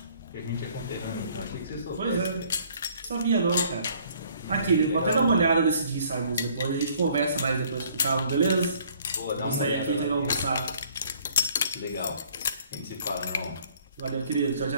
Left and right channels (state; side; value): inverted; both; correlation -0.59